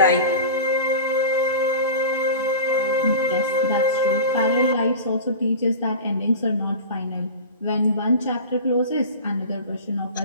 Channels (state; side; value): inverted; both; correlation -0.32